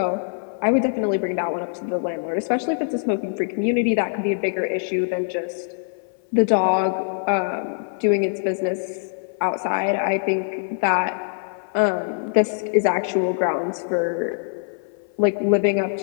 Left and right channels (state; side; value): silent; right; 56 dB below the other